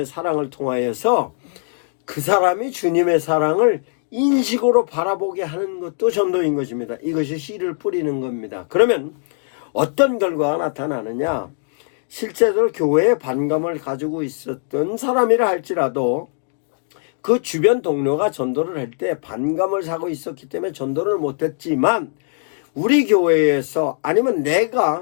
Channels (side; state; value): right; silent; digital silence